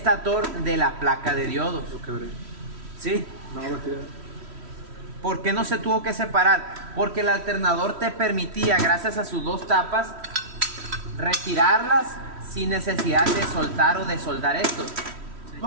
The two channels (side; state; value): left; late; 3.1 ms